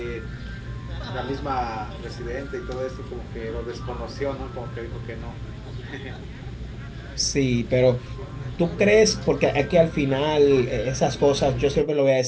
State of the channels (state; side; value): identical; both; correlation 1.00